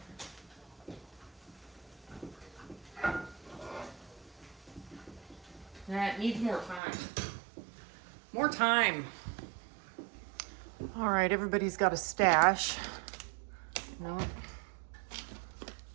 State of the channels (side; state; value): left; drops out; at 6.8 s